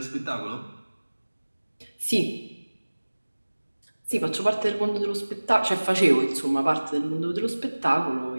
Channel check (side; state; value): both; inverted; correlation -1.00